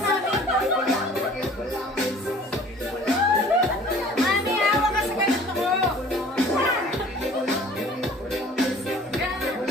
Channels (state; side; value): normal; both; correlation 0.49